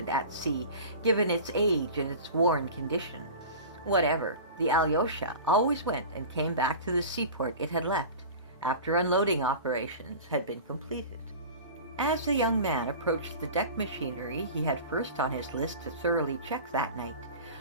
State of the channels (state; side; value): inverted; both; correlation -0.35